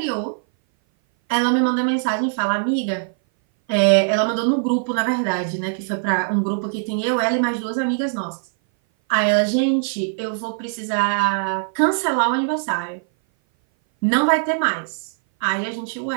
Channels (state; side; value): silent; left; 59 dB below the other